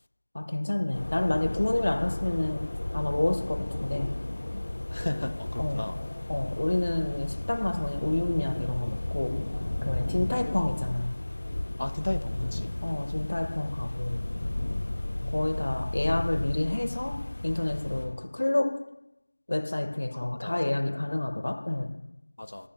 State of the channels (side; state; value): both; inverted; correlation -1.00